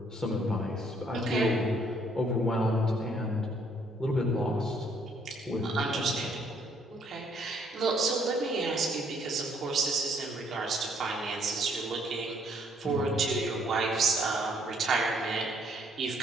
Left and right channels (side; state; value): both; normal; correlation 0.66